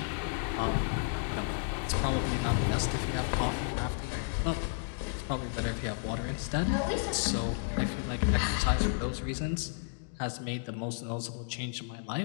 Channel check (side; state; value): right; silent; digital silence